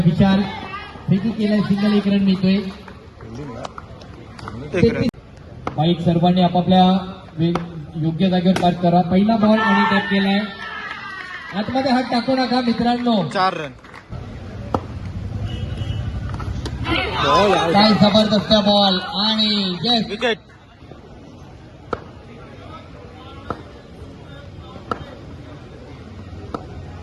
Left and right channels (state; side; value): identical; both; correlation 1.00